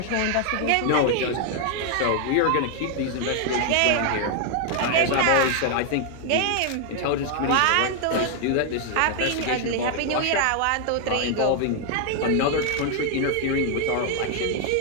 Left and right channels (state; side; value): different; both; correlation 0.00